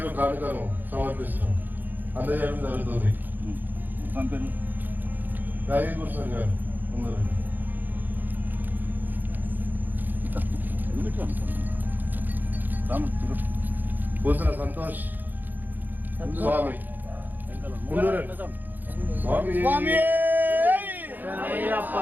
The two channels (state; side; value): late; left; 0.087 ms